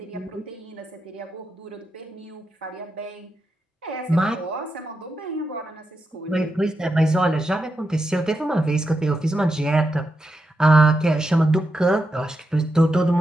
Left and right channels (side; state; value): both; normal; correlation 0.86